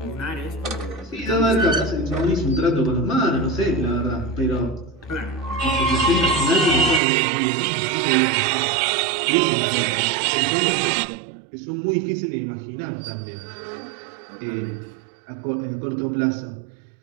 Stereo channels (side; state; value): left; drops out; at 7.0 s